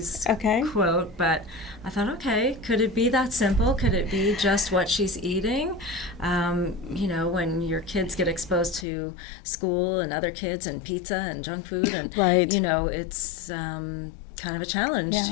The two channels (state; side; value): drops out; right; at 8.8 s